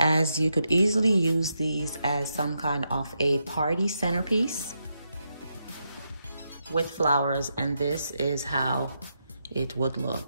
you could easily use these as some kind of a party centerpiece with flowers, and this is how it would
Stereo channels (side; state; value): both; inverted; correlation -0.83